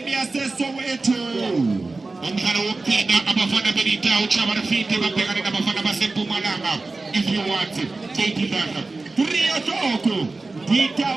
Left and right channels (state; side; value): quieter; left; 3.5 dB